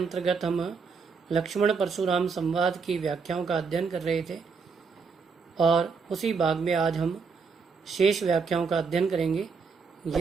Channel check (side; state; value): left; quieter; 5.2 dB